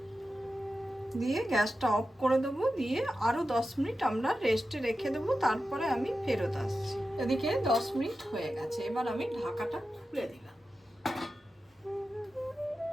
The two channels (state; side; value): normal; both; correlation 0.91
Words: দিয়ে গ্যাসটা অফ করে দেবো। দিয়ে আরো 10 মিনিট আমরা রেস্টে রেখে দেবো, তারপরে আমি ফেরত আসছি। এদিকে 10 মিনিট হয়ে গেছে। এবার আমি ঢাকাটা খুলে দিলাম।